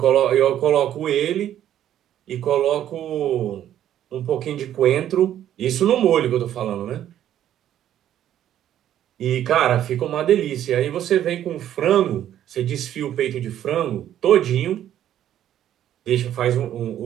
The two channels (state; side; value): quieter; left; 11.2 dB